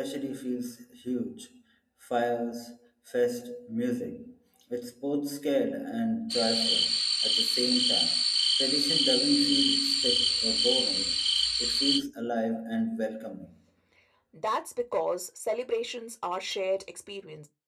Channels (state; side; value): identical; both; correlation 1.00